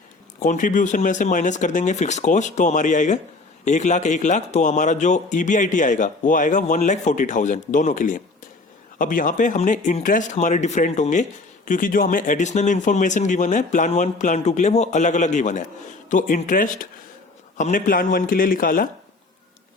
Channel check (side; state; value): right; quieter; 3.4 dB